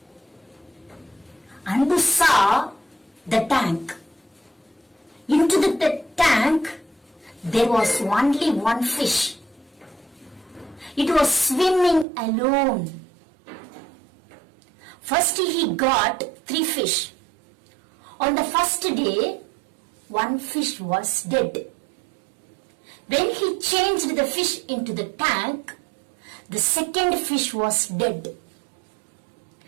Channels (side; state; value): left; drops out; at 12.1 s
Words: Anbu saw the tank. Into the tank there was only one fish. It was swimming alone. First he got 3 fish. On the first day, 1 fish was dead. When he changed the fish into the tank, the second fish was dead.